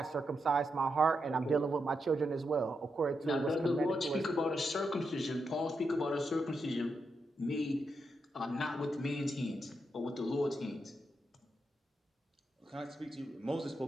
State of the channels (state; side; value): normal; both; correlation 0.84